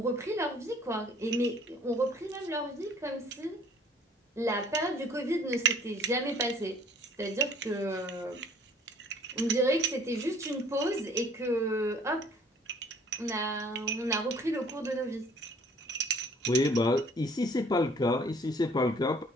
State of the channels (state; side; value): normal; both; correlation 0.56